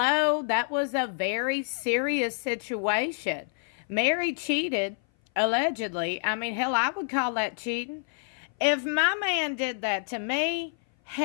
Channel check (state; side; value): silent; right; 57 dB below the other